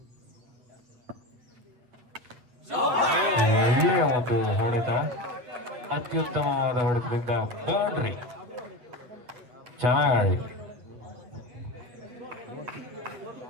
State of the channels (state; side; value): late; left; 8.5 ms